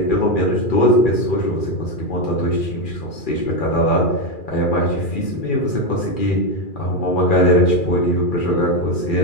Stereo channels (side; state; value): right; late; 2.4 ms